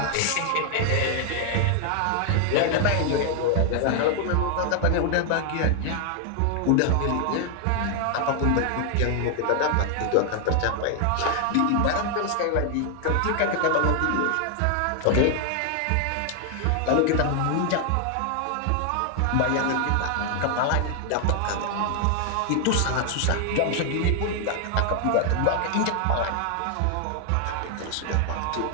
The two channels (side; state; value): both; different; correlation 0.00